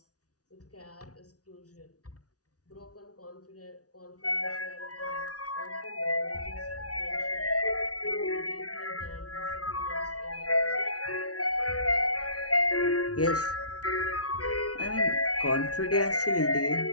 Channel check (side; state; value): right; late; 0.68 ms